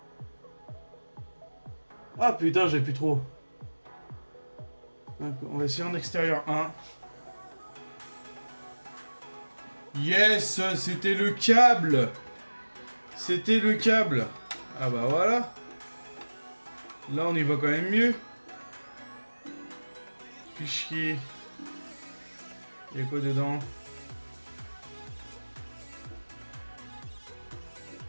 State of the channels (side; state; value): both; inverted; correlation -1.00